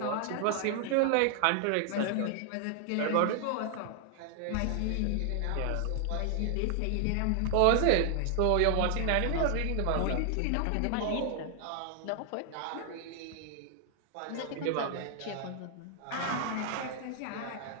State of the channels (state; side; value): different; both; correlation 0.00